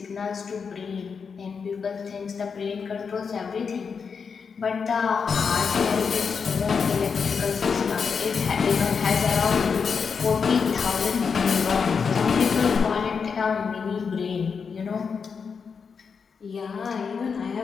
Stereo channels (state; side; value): quieter; right; 5.8 dB